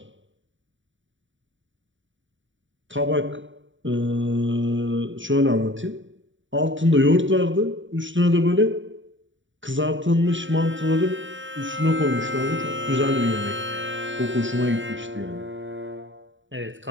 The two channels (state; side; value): late; left; 0.55 ms